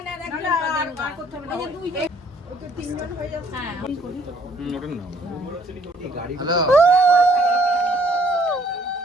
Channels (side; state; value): both; normal; correlation 0.62